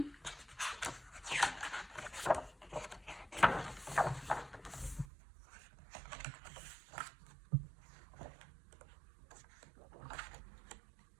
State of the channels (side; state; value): left; drops out; at 5.1 s